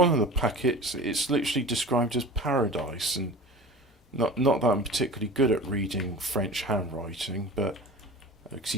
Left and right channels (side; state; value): both; normal; correlation 0.37